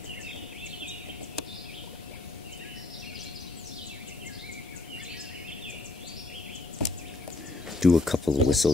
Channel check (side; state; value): right; quieter; 3.0 dB